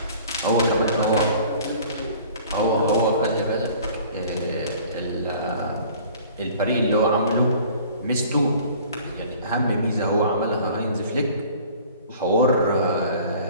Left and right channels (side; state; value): both; inverted; correlation -0.49